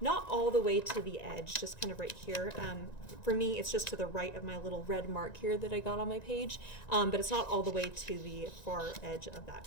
all the way to the edge, just kind of right here. For me, it's just to the right of my little red mark here that I got on my page, but it's not all the way to the far edge of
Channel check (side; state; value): right; late; 1.9 ms